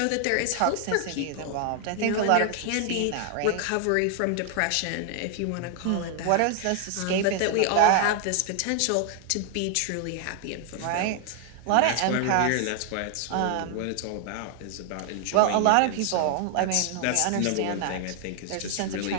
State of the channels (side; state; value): both; different; correlation 0.00